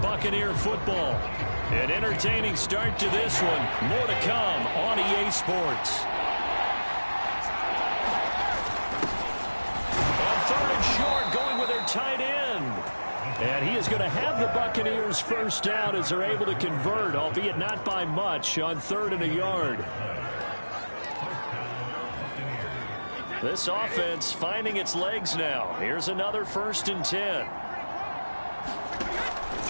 football. An entertaining start to this one. More to come on EA Sports. On 3rd and short, going with their tight end. And he is going to have the Buccaneers first down as they're able to convert, albeit not by much, on 3rd and a yard. This offense finding its legs now. Here's another 1st and 10.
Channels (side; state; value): both; inverted; correlation -1.00